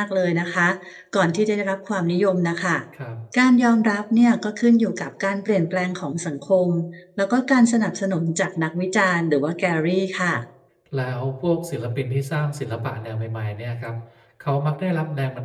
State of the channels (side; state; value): both; identical; correlation 1.00